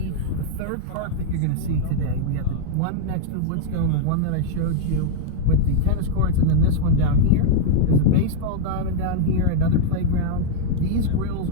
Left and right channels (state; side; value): different; both; correlation -0.01